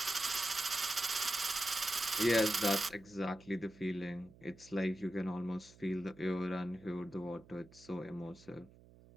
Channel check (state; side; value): noise; right; hum, 23 dB below the sound